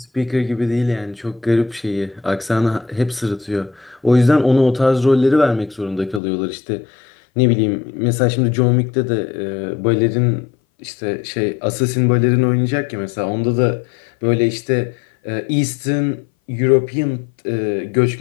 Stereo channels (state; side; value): drops out; right; at 6.2 s